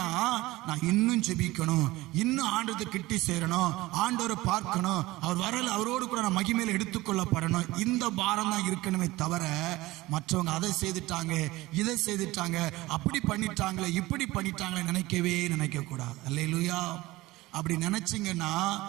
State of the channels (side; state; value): left; quieter; 19.2 dB